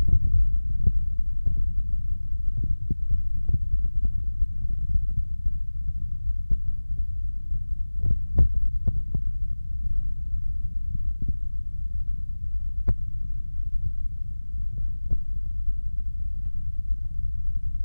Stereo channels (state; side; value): inverted; both; correlation -1.00